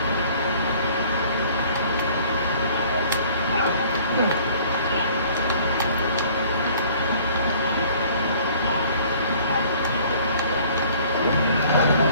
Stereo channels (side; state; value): both; inverted; correlation -0.54